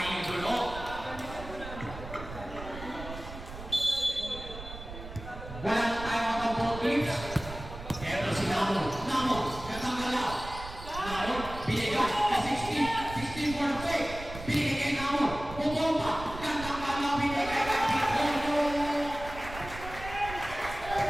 idolo. Wala na tayo ang ball teams. Pero si Namo, gandang galaw. Namo, binigay ka 16 for the fake. Binigay kay Namo, bumomba. Gandang galaw, binigay kay Pitono.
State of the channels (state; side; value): noise; right; rumble, 12 dB below the sound